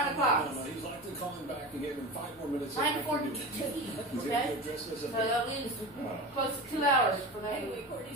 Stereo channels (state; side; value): normal; both; correlation 0.28